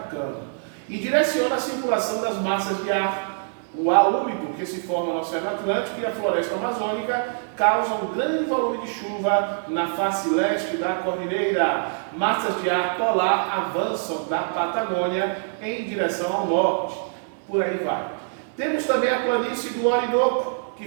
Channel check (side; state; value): left; silent; digital silence